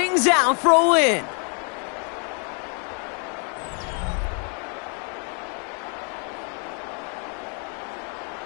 out for a win.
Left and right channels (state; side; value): quieter; right; 39.7 dB